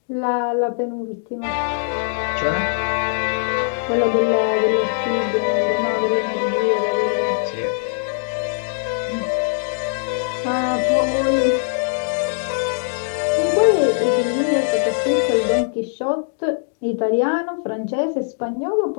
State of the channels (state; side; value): silent; right; digital silence